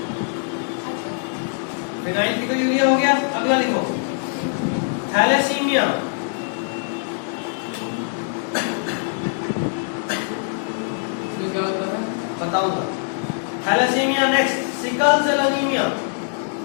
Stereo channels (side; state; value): right; silent; 58 dB below the other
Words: फिनाइल कीटोयूरिया हो गया। अगला लिखो थैलेसीमिया, इसमें क्या होता है? बताऊंगा। Thalassaemia next, sickle cell anaemia,